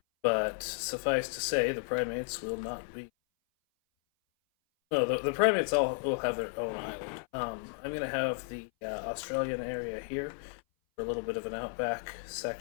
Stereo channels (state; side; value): silent; right; 56 dB below the other